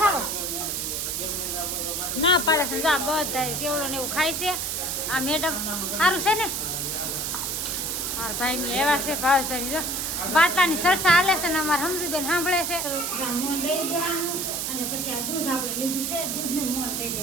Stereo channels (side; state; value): right; noise; hiss, 1 dB below the sound